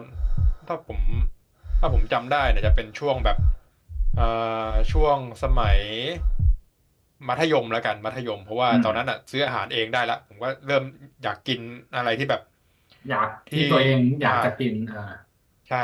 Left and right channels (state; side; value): identical; both; correlation 1.00